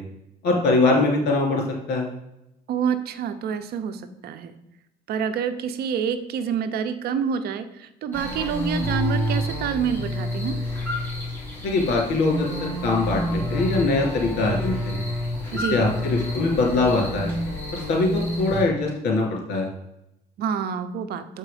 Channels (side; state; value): both; normal; correlation 0.47